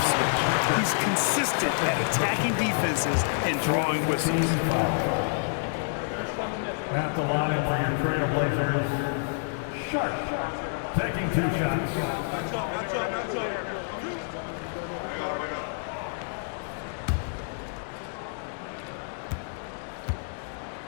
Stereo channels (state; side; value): silent; right; digital silence